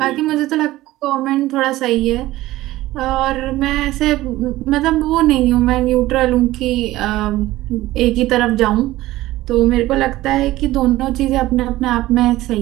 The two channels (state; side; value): quieter; left; 16.6 dB